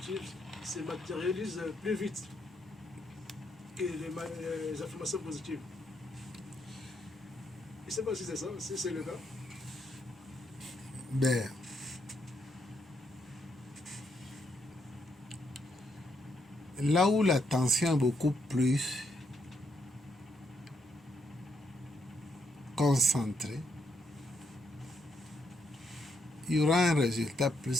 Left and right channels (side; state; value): both; normal; correlation 0.76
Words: se matérialisent plus vite que les affirmations positives. Je ne sais pas si c'est ça, si c'est le cas. Ben, là où l'attention est beaucoup plus concentrée, il y aura un résultat